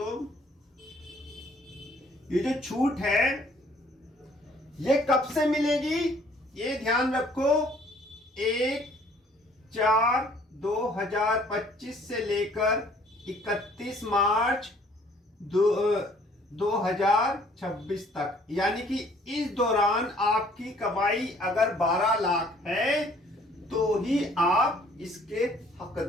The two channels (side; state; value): both; normal; correlation 0.59